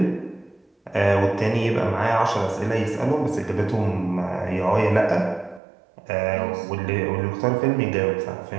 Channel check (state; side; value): drops out; left; at 5.6 s